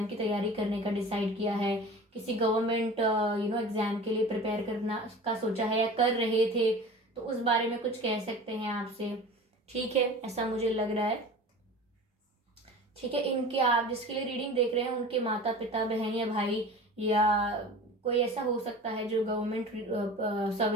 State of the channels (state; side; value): normal; both; correlation 0.38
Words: की तैयारी करने का डिसाइड किया है, किसी गवर्नमेंट एग्जाम के लिए प्रिपेयर करना का सोचा है या कर रहे थे, तो उस बारे में कुछ कह सकते हैं आपसे। ठीक है, ऐसा मुझे लग रहा है। ठीक है, इनके, आप जिसके लिए रीडिंग देख रहे हैं, उनके माता पिता, बहन या भाई, या कोई ऐसा हो सकता है जो गवर्नमेंट